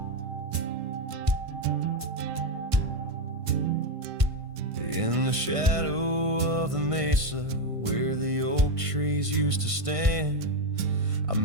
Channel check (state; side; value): late; left; 1.5 ms